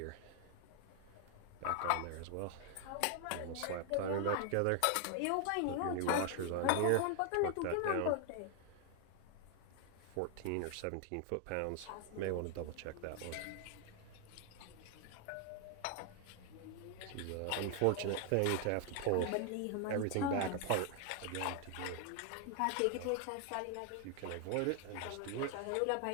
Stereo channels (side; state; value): both; different; correlation 0.00